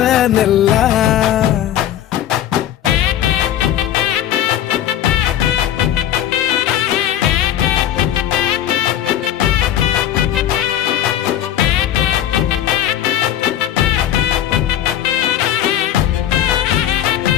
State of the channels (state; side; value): quieter; right; 11.4 dB